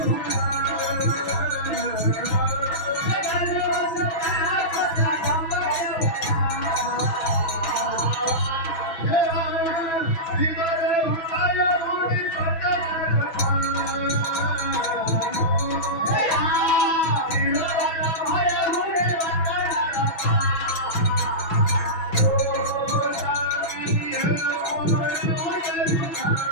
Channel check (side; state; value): right; late; 6.0 ms